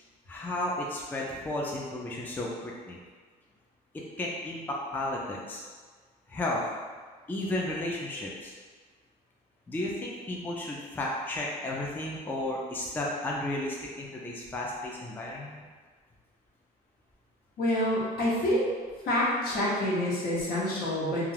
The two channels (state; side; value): normal; both; correlation 0.41